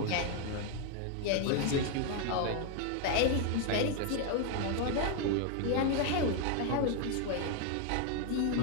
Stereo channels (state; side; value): different; both; correlation 0.01